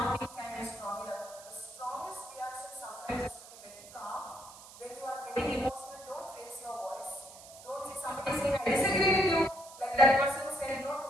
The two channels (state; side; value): noise; right; hiss, 18 dB below the sound